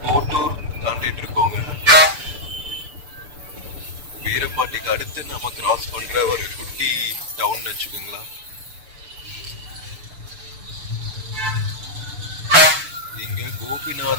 கோட்டூர் தாண்டிட்டு இருக்கோங்க. வீரபாண்டிக்கு அடுத்து நம்ம கிராஸ் பண்ற ஒரு குட்டி டவுன் வச்சுக்கோங்களா. இங்க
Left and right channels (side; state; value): left; late; 6.8 ms